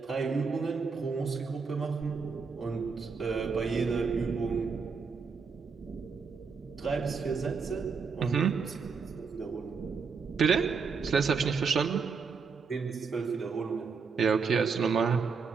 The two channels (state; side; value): quieter; left; 5.3 dB